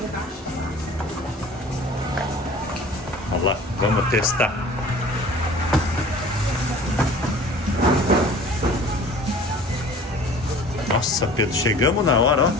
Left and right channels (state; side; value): normal; both; correlation 0.46